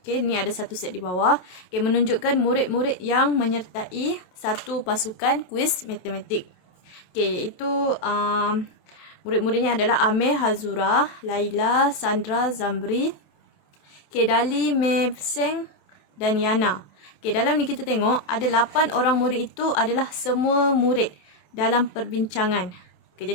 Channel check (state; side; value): late; right; 27 ms